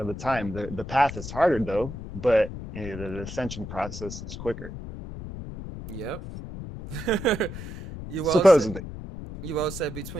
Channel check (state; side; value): noise; left; rumble, 10 dB below the sound